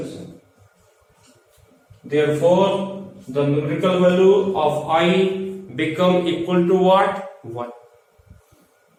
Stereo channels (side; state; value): both; identical; correlation 1.00